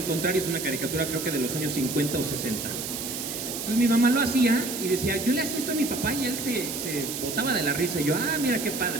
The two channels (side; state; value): right; noise; hiss, 5 dB below the sound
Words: y es una caricatura creo que de los años 50 o 60. Entonces mi mamá lo hacía y decía, yo le hacía esto a mi papá, y él se botaba de la risa. Y yo, mira qué